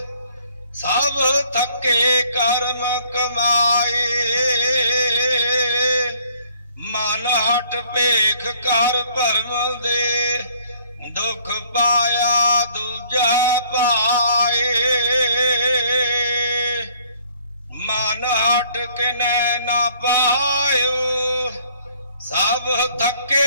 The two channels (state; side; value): inverted; both; correlation -0.60